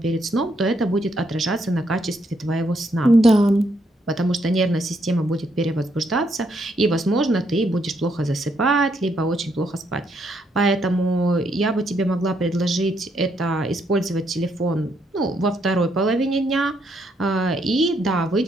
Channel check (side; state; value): both; normal; correlation 0.75